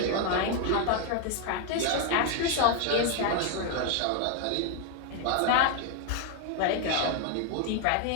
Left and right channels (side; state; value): both; different; correlation 0.01